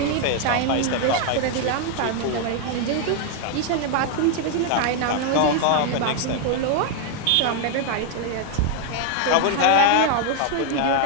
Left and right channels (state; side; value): different; both; correlation 0.00